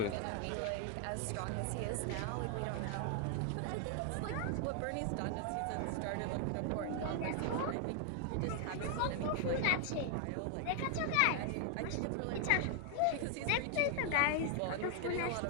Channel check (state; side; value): different; both; correlation 0.00